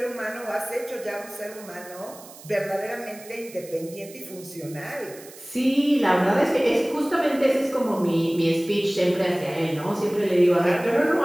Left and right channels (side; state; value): right; noise; hiss, 19 dB below the sound